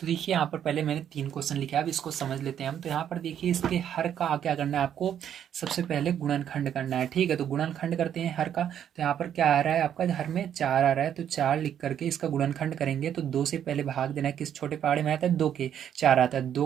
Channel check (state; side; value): quieter; left; 9.6 dB